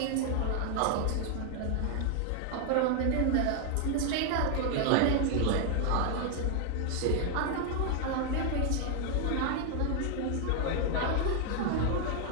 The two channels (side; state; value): both; different; correlation 0.00